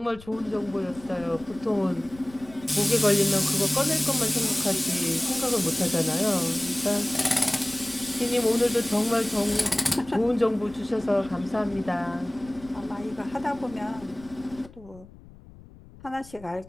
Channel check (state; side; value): noise; left; rumble, 21 dB below the sound